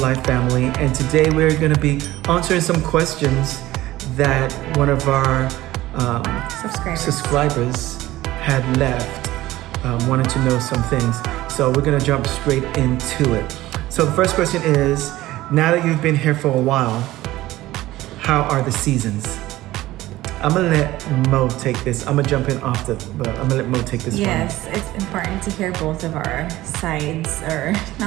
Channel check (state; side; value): quieter; left; 16.6 dB